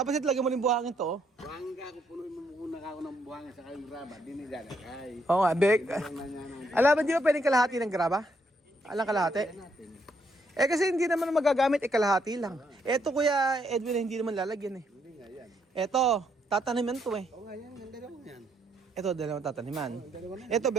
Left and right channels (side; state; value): both; normal; correlation 0.74